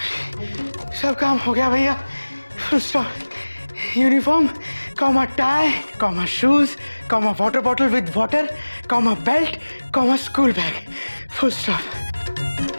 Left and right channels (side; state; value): both; inverted; correlation -1.00